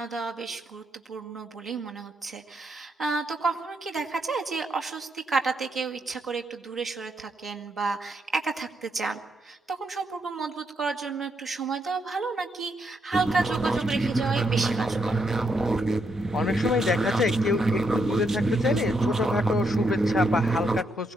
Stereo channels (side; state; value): both; normal; correlation 0.78